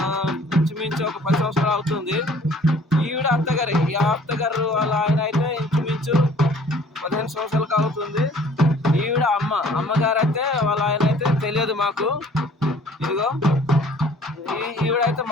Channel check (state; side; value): normal; both; correlation 0.54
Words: ఇంచుమించు ఒక 10 సంవత్సరాలు అవుతుంది. ఈవిడ అత్తగారు వాళ్ళ ఆయన అయితే ఇంచుమించు 15 సంవత్సరాలకు అవుతుంది. ఈవిడ అమ్మగారు అయితే వాళ్ళ ఆయన అయితే తెలియదు మాకు. ఇదిగో ఈవిడైతే